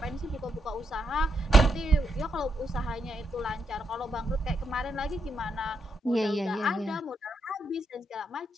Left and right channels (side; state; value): both; normal; correlation 0.80